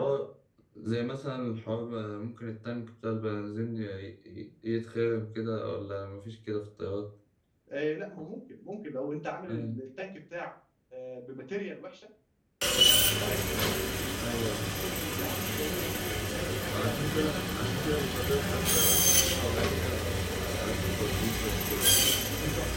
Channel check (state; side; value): identical; both; correlation 1.00